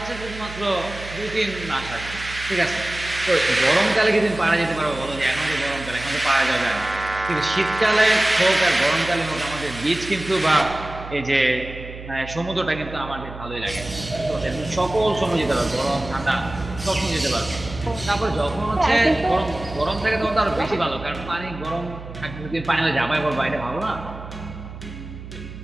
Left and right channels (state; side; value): noise; right; hum, 13 dB below the sound